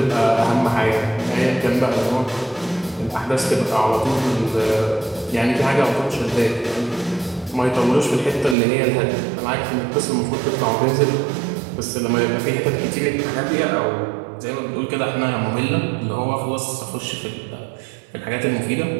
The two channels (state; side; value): drops out; left; at 8.6 s